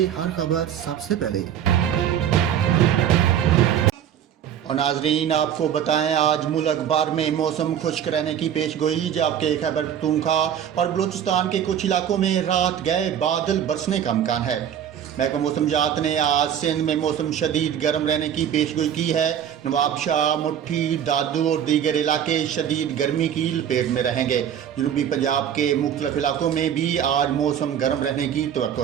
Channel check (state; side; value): quieter; left; 9.4 dB